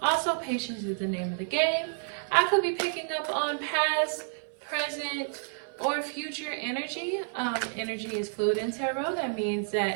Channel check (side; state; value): left; silent; 56 dB below the other